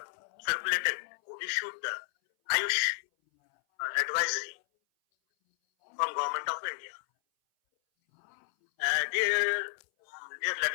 who issued the Ayush advisory from Government of India. Dear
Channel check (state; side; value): silent; right; 56 dB below the other